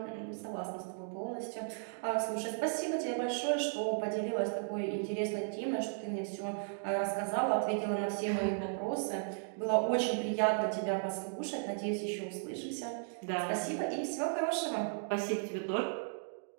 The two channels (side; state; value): left; silent; digital silence